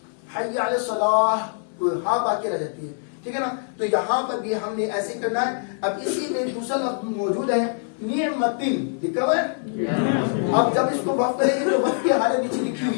حی علی الصلاۃ, ہاں باقی رہ جاتی ہے. ٹھیک ہے نا. تو یہاں پر بھی ہم نے ایسے کرنا ہے. اب اسی میں دوسرا لفظ موجود ہے نعمتن, لکھا ہوا ہے. اب جب اس کو وقف کریں گے تو وقف کی حالت نیچے لکھی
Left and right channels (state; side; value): silent; right; 62 dB below the other